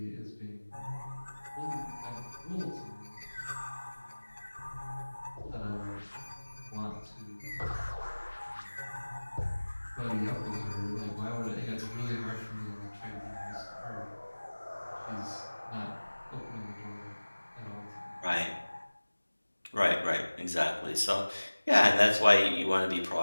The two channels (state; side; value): inverted; both; correlation -1.00